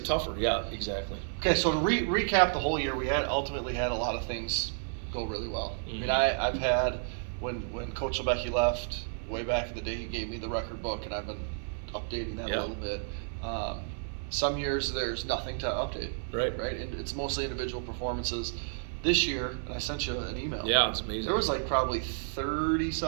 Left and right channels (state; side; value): silent; left; 57 dB below the other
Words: tougher. Yeah, exactly. Okay, so to recap the whole year, we ultimately had a lot of things go really well. Mm-hmm. I mean, I've had when Coach Lebecki left way back in the day, he gave me the record book, and I've been updating that a little bit. Some years there's nothing to update. Right. And it's mostly individual performances. This year, I sent you an email. Yeah, it's amazing. There was like probably 30